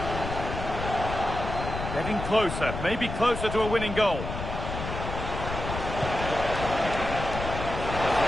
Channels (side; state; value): left; noise; rumble, 6 dB below the sound